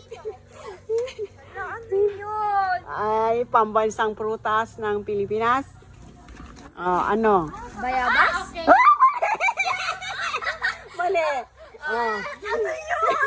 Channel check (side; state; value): both; identical; correlation 1.00